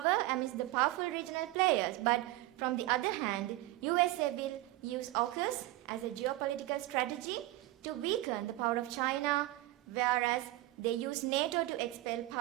amidst the powerful regional players. But from the other hand, USA will use AUKUS as a geopolitical strategy to weaken the power of China, whereas they use NATO to expel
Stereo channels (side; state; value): left; quieter; 17.3 dB